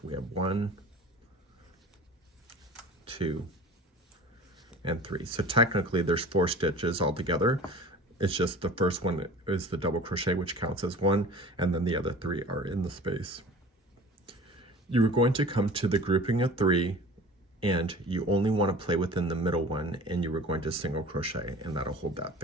we have 1, 2, and 3. So technically there's 4 stitches altogether. It's just the first one is the double crochet, which counts as 1, and then the other 3 are in the space. You are going to come to the grouping of 3, and you only want to play within the middle one, and you are going to single crochet, and that'll hold that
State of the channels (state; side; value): normal; both; correlation 0.42